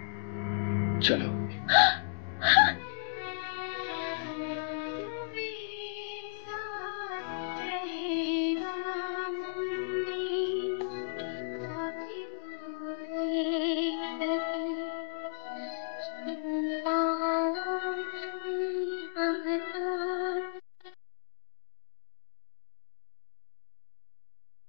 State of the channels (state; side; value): silent; right; digital silence